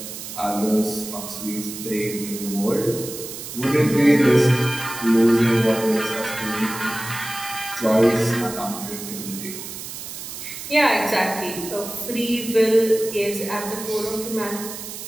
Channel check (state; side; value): noise; right; hiss, 10 dB below the sound